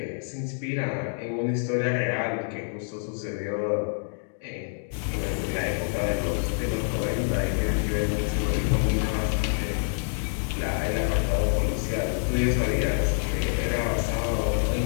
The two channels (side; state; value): right; silent; digital silence